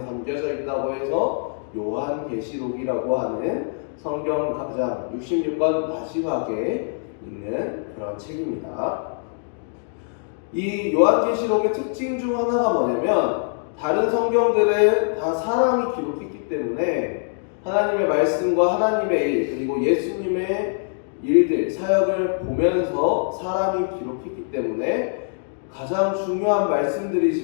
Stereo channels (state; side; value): silent; right; digital silence